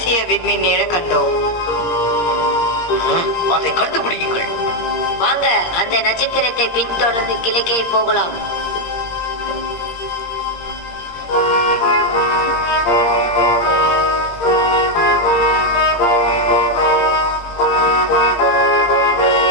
விண்மீன் நிழ கண்டோம். அதை கண்டுபிடியுங்கள். வாங்க, அந்த நட்சத்திரத்தை பின்தொடர்ந்து கிழக்கே போகலாம்.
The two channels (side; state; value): right; late; 17 ms